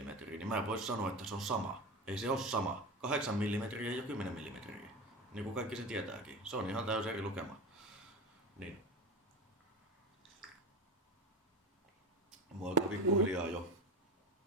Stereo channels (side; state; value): both; normal; correlation 0.26